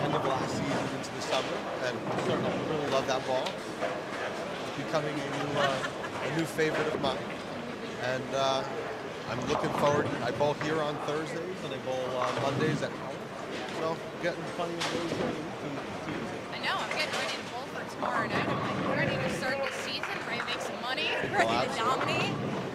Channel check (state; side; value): identical; both; correlation 1.00